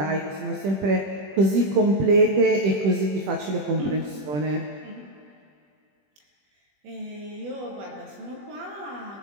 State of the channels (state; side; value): late; left; 20 ms